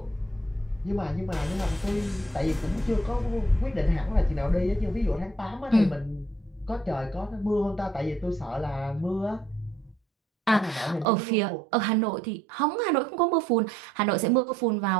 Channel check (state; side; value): drops out; left; at 11.1 s